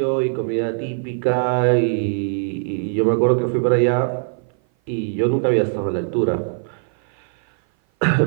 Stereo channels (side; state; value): left; silent; 57 dB below the other